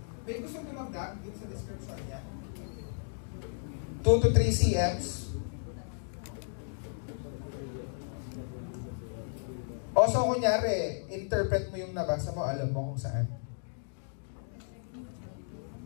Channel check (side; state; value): right; silent; digital silence